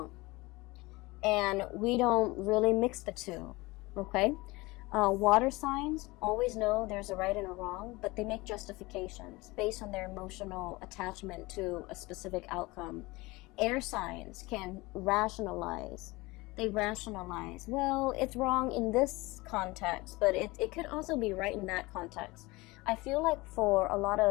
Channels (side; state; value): right; quieter; 22.4 dB